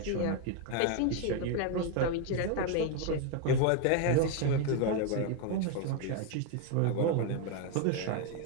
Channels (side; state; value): both; different; correlation 0.01